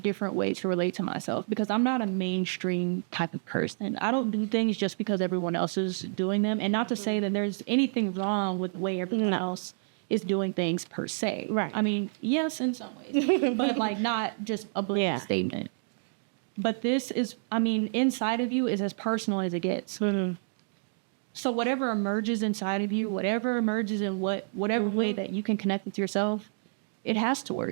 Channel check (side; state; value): left; silent; digital silence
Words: way to relate to myself because I'm not a mainstream type of person. I don't do things just because everyone else is doing them. And not to say that there's anything wrong with the way everyone else is doing things per se. Right. I mean, yes, in some ways, but like not just a blanket statement. But this is, inside of you is as personal as it gets. Mm-hmm. So whatever emerges inside of you, whatever emerges in whatever way that you can connect with yourself, it has to